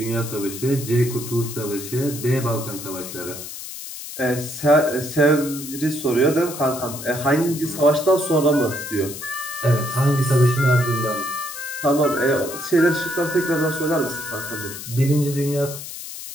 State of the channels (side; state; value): left; noise; hiss, 10 dB below the sound